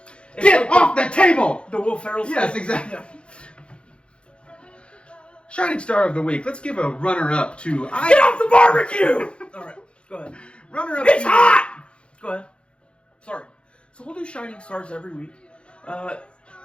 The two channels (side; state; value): right; late; 0.057 ms